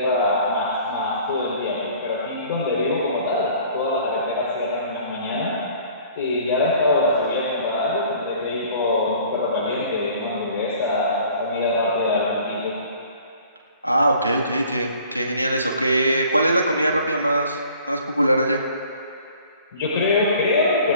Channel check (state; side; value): inverted; both; correlation -0.52